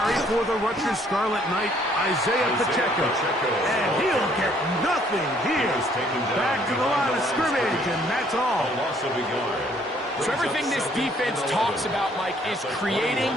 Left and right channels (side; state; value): both; normal; correlation 0.63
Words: for the Rutgers Scarlet Knight, Isaiah Pacheco. And he'll get nothing here. Back to the line of scrimmage, and that's all. So everything this defense talks about, Mike, is creating